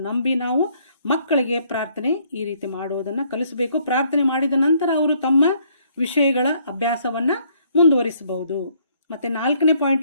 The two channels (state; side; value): inverted; both; correlation -0.66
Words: ನಂಬಿ ನಾವು ಮಕ್ಕಳಿಗೆ ಪ್ರಾರ್ಥನೆ ಈ ರೀತಿ ಮಾಡುವುದನ್ನು ಕಲಿಸಬೇಕು. ಪ್ರಾರ್ಥನೆ ಮಾಡಿದ ನಂತರ ಅವರು ತಮ್ಮ ವಿಷಯಗಳ ಅಭ್ಯಾಸವನ್ನು ಮುಂದುವರಿಸಬಹುದು. ಮತ್ತು 4ನೇ